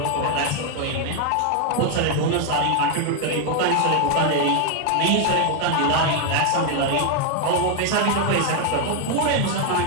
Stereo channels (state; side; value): different; both; correlation 0.01